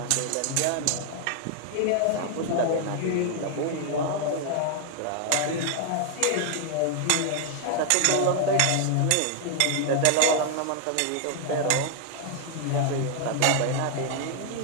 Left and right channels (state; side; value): different; both; correlation 0.00